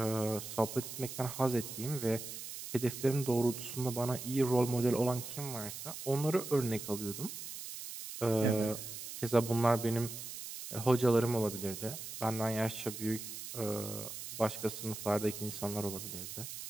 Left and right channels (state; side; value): noise; right; hiss, 9 dB below the sound